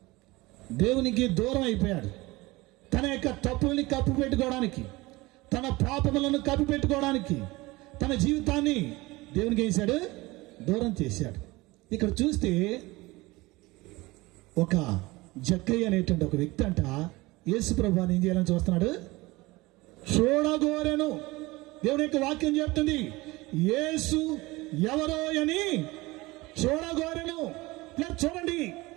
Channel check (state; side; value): quieter; left; 21.4 dB